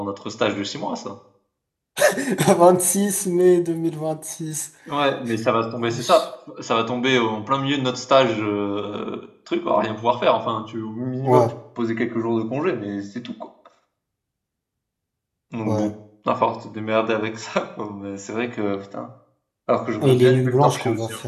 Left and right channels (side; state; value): both; identical; correlation 1.00